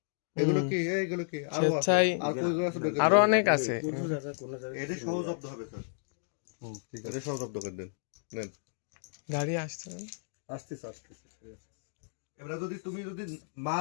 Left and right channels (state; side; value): silent; right; digital silence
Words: এগুলো কি? এগুলো কি? আরো আছে। স্বেচ্ছায় আর কইগুলো আছে? আরো অনেক আছে। এটা সহ জব্দ হবে স্যার। ঠিক আছে, সহ জব্দ করে দেন। নেন। গাড়ি আসছে না? আসতেছে, আসতেছে। এবারে যদি তুমি যদি